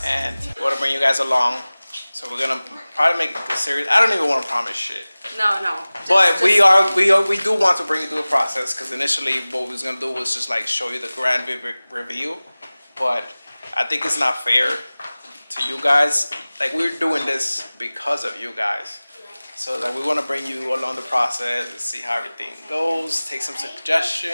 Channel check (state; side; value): inverted; both; correlation -0.99